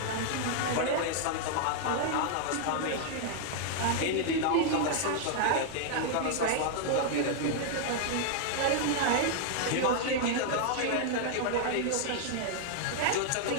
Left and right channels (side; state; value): both; different; correlation -0.01